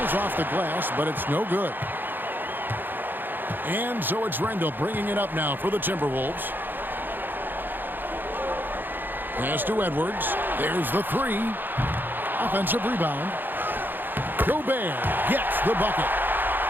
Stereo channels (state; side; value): late; left; 0.092 ms